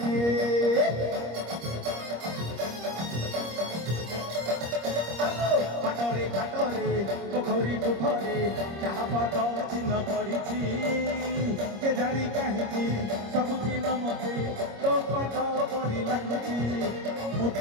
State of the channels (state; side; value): late; left; 25 ms